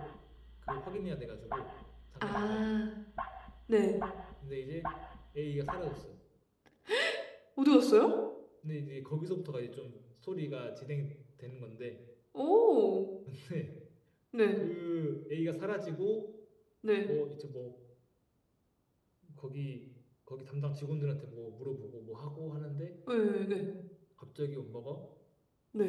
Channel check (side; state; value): both; identical; correlation 1.00